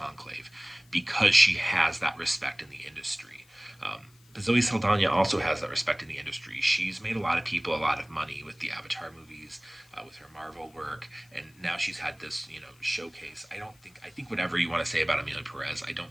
because she has that respect in the industry. But Zoe Saldana also has that respect in the industry. She's made a lot of people a lot of money with the Avatar movies, with her Marvel work, and now she's had this, showcase. I think whatever you want to say about Amelia Perez, I don't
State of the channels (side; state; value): left; noise; hiss, 30 dB below the sound